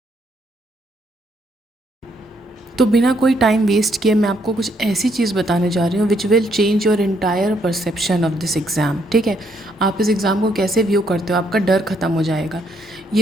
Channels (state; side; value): normal; both; correlation 0.72